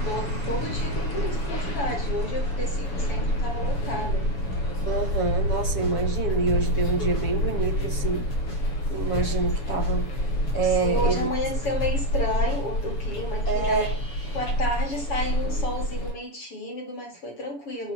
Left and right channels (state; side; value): late; right; 7.1 ms